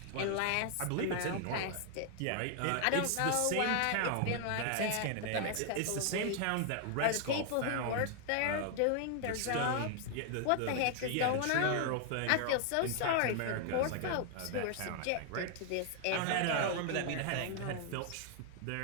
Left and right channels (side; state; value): both; different; correlation 0.00